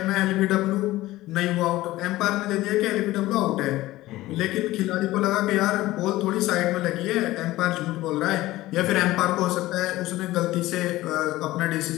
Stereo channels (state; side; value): quieter; right; 17.2 dB